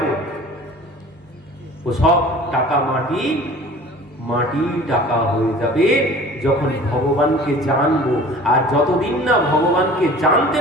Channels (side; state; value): both; normal; correlation 0.44